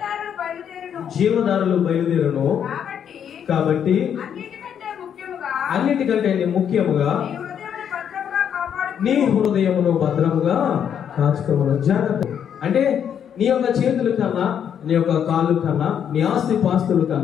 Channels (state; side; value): quieter; right; 8.6 dB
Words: జీవధారలు బయలుదేరును, కాబట్టి అన్నిటికంటే ముఖ్యముగా నీ హృదయమును భద్రముగా కాచుకోమను. జాగ్రత్త అంటే నీ యొక్క చేతుల కన్నా, నీ యొక్క కాళ్ళు కన్నా, నీ ఆస్తి పాస్తుల